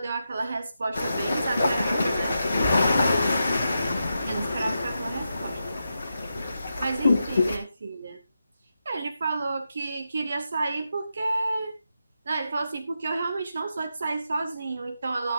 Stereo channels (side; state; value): both; inverted; correlation -0.87